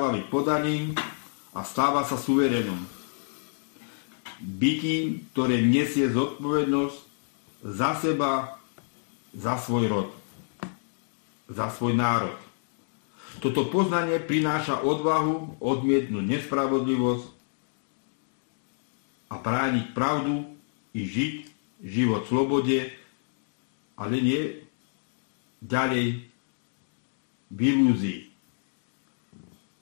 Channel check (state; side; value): silent; right; digital silence